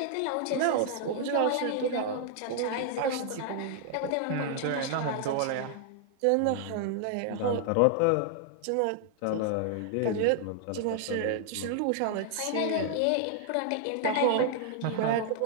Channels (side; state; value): both; different; correlation 0.00